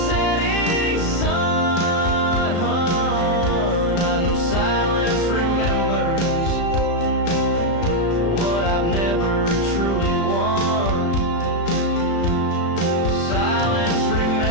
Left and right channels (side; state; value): right; late; 35 ms